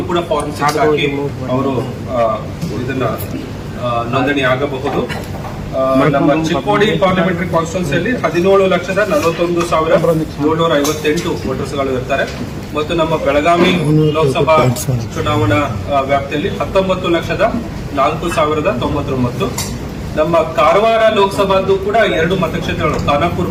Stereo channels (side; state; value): both; identical; correlation 1.00